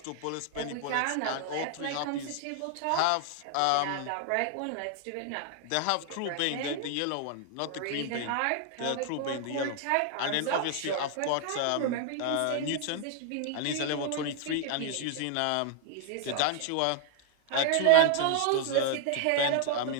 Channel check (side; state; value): both; different; correlation 0.00